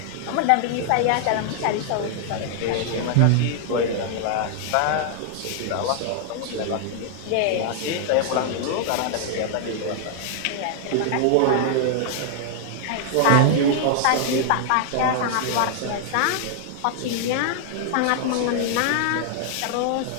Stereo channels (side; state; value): both; different; correlation 0.00